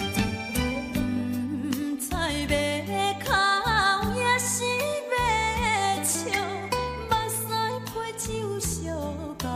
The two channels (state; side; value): identical; both; correlation 1.00